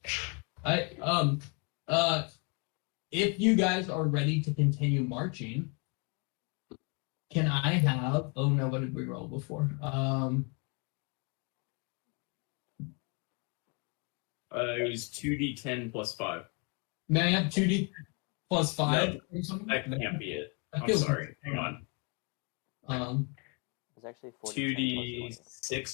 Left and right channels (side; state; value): right; quieter; 34.7 dB